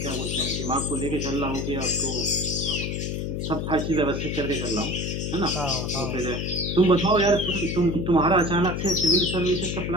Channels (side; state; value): left; noise; hum, 2 dB below the sound